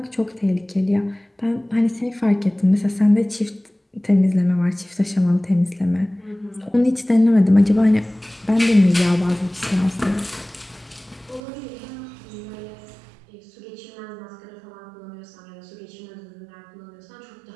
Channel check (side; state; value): left; drops out; at 11.4 s